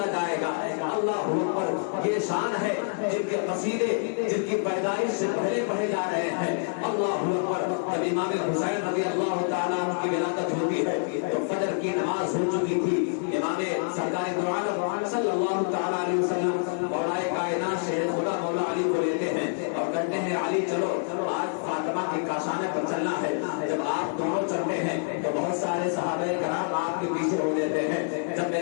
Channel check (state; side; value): silent; right; digital silence